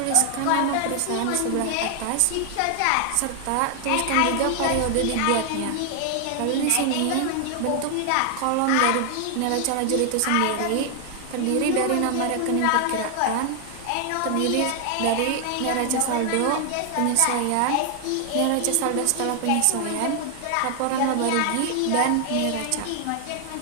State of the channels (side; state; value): both; different; correlation 0.00